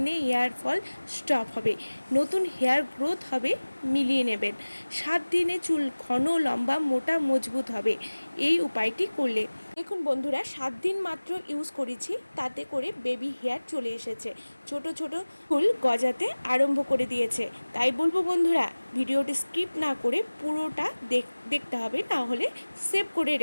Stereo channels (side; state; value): both; inverted; correlation -1.00